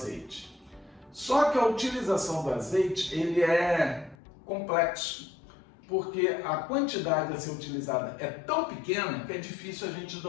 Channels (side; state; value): right; drops out; at 4.2 s